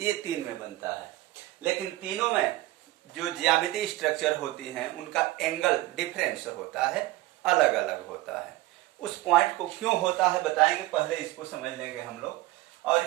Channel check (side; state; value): left; quieter; 17.7 dB